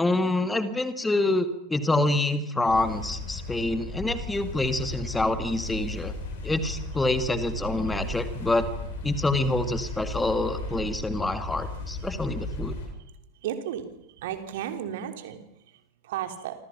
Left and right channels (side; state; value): both; normal; correlation 0.70